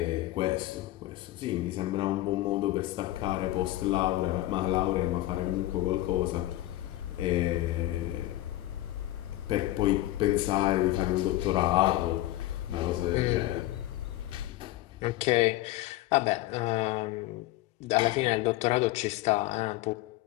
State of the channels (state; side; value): quieter; right; 16.2 dB